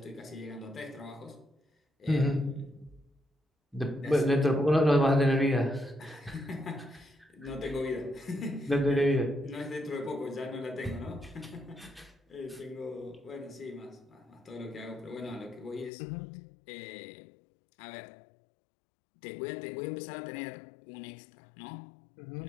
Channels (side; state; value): right; drops out; at 15.9 s